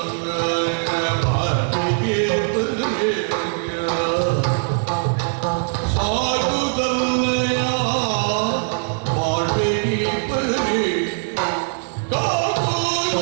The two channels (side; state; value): left; silent; digital silence